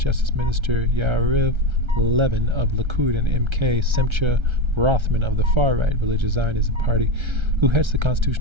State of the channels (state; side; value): late; left; 1.3 ms